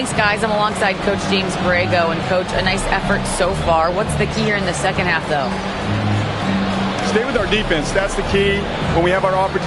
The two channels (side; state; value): both; identical; correlation 1.00